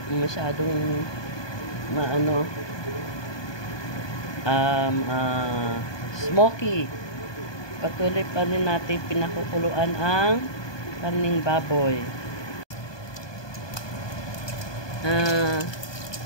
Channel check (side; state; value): right; late; 1.2 ms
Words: masyadong smoky. Patuloy pa rin natin pinakukuluan ang karning baboy.